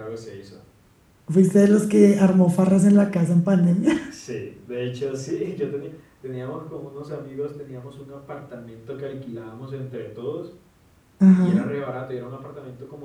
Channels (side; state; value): both; identical; correlation 1.00